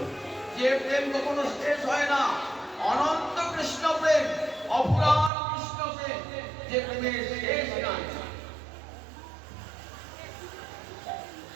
যে প্রেম কখনো শেষ হয় না, অনন্ত কৃষ্ণ প্রেম, অপুরাণ কৃষ্ণ প্রেম, যে প্রেমের শেষ নাই।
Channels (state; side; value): drops out; left; at 5.3 s